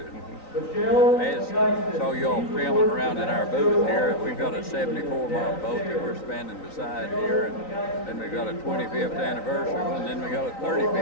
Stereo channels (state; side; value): late; right; 3.9 ms